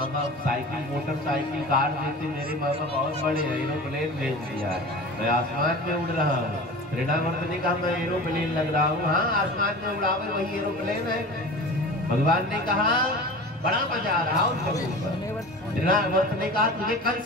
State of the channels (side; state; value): both; normal; correlation 0.35